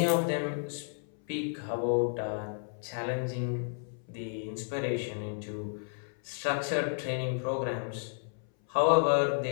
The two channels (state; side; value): silent; right; 56 dB below the other